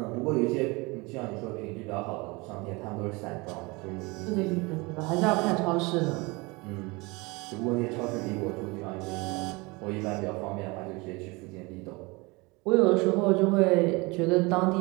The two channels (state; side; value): quieter; left; 25.6 dB